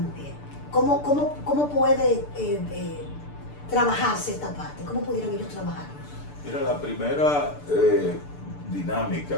¿Cómo puede trabajarse esta parte? ¿Cómo pudieran ellos trabajar? Mira, la primera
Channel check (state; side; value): late; right; 6.8 ms